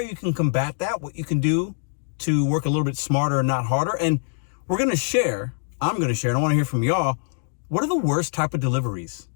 can combat that, what you can do to work a little bit smarter and not harder. And I'm going to share, and I want to hear from y'all, what are the worst type of deliveries?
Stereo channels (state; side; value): silent; right; digital silence